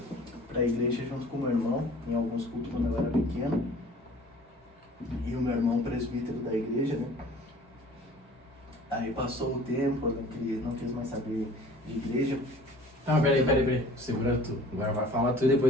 igreja junto com o meu irmão, em alguns cultos quando eu era pequeno. E o meu irmão presbítero da igreja, né? Aí passou o tempo, eu não quis mais saber de igreja. Não, peraí. Segura tu. Agora vai falar tu e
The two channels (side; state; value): both; normal; correlation 0.48